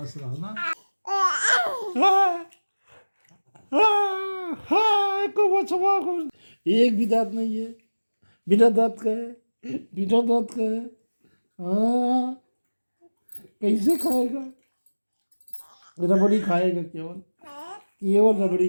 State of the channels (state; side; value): inverted; both; correlation -1.00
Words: रहो ना। एक भी दांत नहीं है, बिना दांत का है, बिना दांत का है। हाँ कैसे खाएगा? रबड़ी खाएगा केवल, केवल रबड़ी